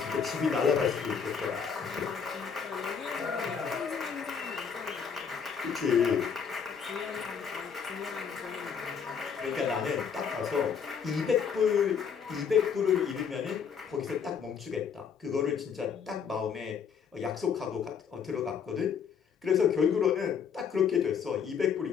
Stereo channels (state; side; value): quieter; right; 6.8 dB